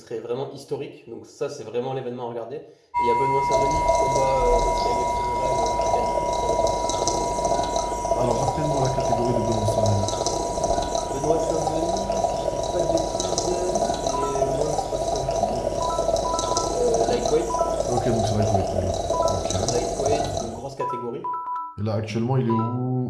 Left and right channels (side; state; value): both; identical; correlation 1.00